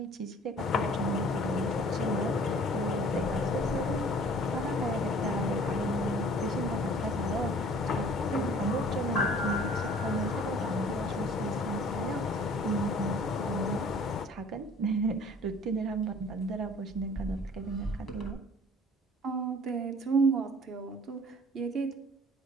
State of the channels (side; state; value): both; normal; correlation 0.50